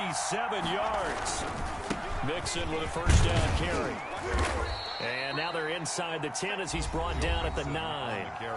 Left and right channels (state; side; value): identical; both; correlation 1.00